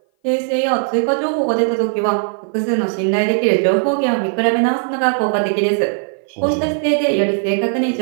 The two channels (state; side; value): silent; left; 57 dB below the other